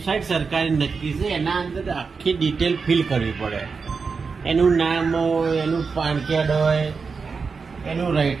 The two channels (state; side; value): quieter; left; 5.0 dB